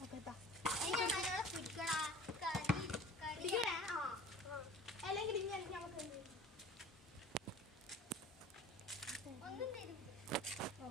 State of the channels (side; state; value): both; normal; correlation 0.42